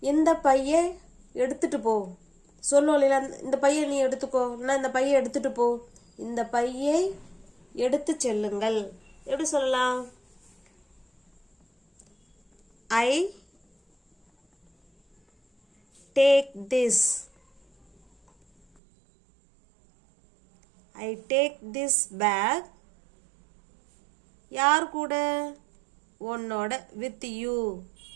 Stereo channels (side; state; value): left; drops out; at 18.8 s